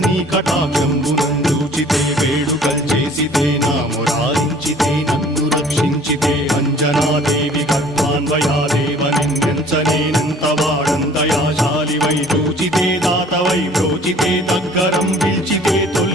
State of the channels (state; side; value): normal; both; correlation 0.52